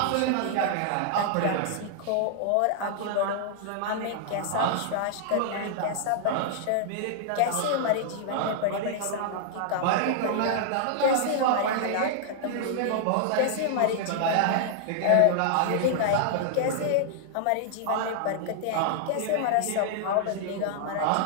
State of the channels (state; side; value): different; both; correlation -0.01